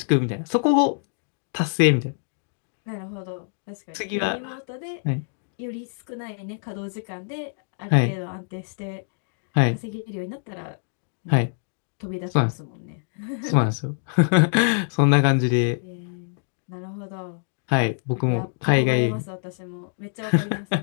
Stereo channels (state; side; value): silent; right; digital silence